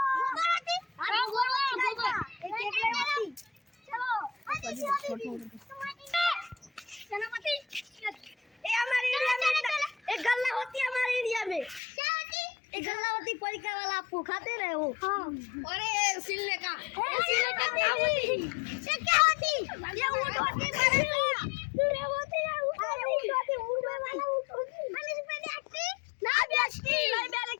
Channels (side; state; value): right; drops out; at 11.8 s